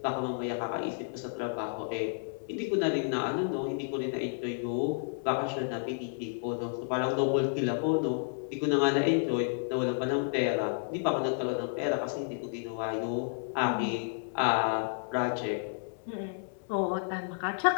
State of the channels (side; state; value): right; silent; 57 dB below the other